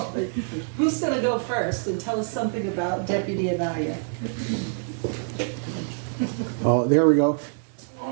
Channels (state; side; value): silent; left; 61 dB below the other